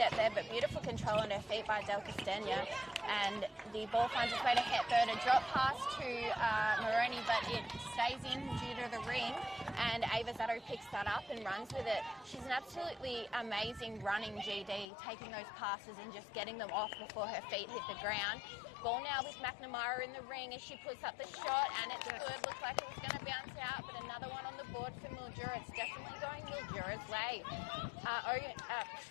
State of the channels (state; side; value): drops out; right; at 14.9 s